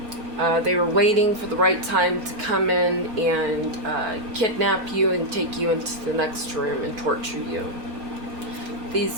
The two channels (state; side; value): late; left; 4.5 ms